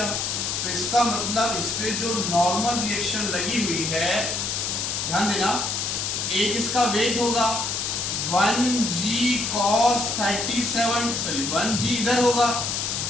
तो इसका मतलब इस पे जो नॉर्मल रिएक्शन लगी हुई है, ध्यान देना, एक इसका वेग होगा 1g cos 37, सॉरी 1g इधर होगा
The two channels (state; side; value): noise; left; hiss, 1 dB below the sound